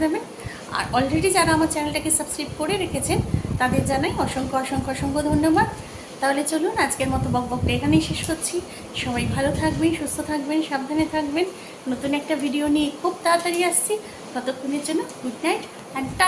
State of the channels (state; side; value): identical; both; correlation 1.00